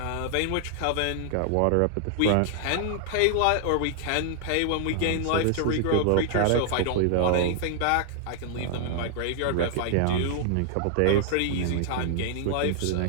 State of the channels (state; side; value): different; both; correlation 0.00